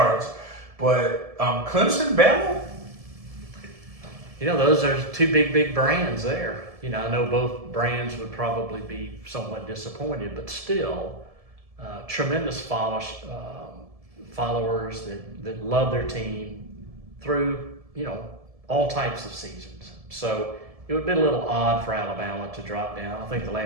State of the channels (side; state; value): left; late; 1.7 ms